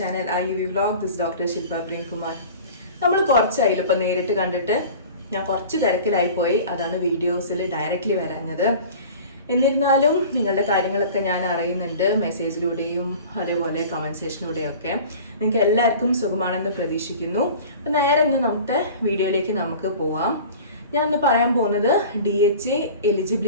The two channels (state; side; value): inverted; both; correlation -0.41